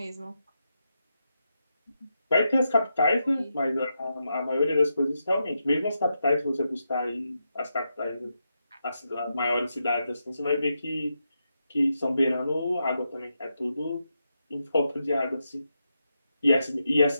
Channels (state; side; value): inverted; both; correlation -0.85